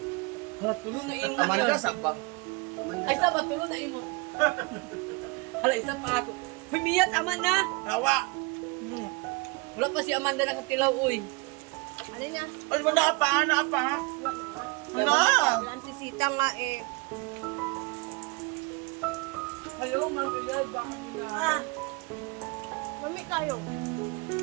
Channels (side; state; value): left; quieter; 27.4 dB